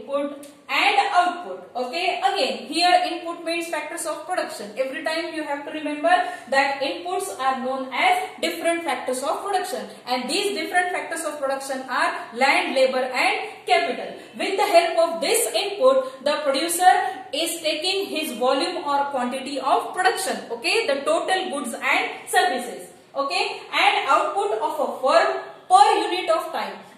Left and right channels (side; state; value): both; identical; correlation 1.00